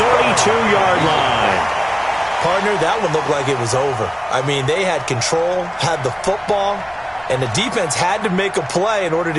32-yard line. Partner, that one looked like it was over. I mean, they had control, had the football, and the defense had to make a play in order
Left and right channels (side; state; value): both; identical; correlation 1.00